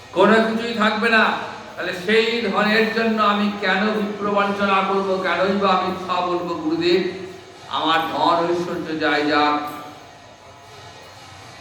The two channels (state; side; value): identical; both; correlation 1.00